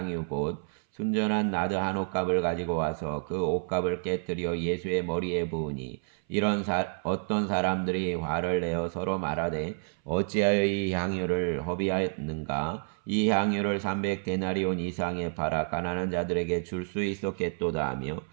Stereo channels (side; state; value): left; silent; 57 dB below the other